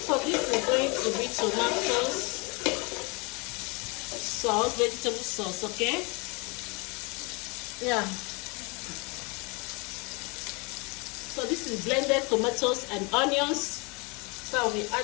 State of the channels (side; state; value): right; quieter; 29.9 dB